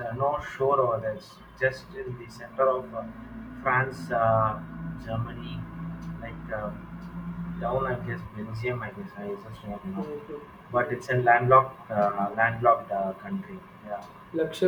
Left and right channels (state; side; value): identical; both; correlation 1.00